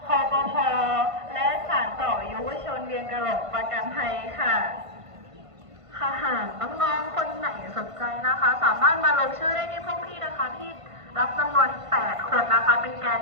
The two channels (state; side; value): late; left; 1.5 ms